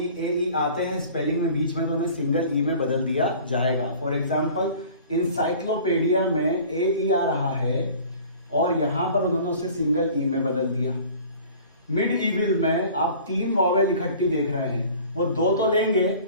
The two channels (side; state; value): both; inverted; correlation -0.46